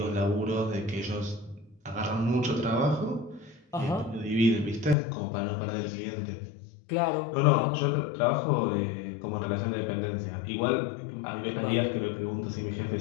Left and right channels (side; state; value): right; drops out; at 5.0 s